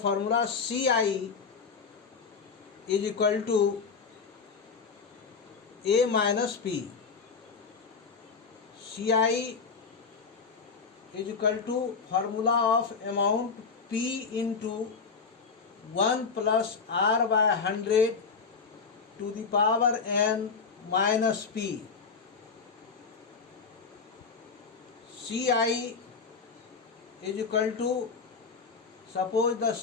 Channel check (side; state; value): right; quieter; 5.2 dB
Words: CI is equal to A minus P. CI is equal to formula of amount P into 1 plus R by 100 to the power n minus P. CI is equal to, suppose the